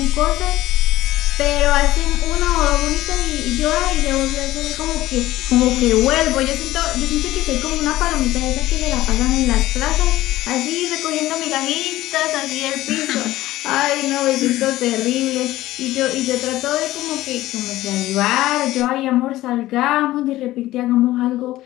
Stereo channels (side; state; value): right; quieter; 16.1 dB